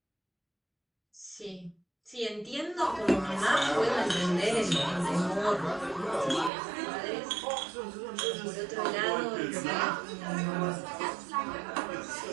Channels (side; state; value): left; drops out; at 6.5 s